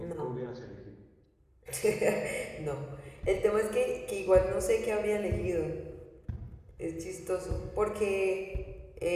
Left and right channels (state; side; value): identical; both; correlation 1.00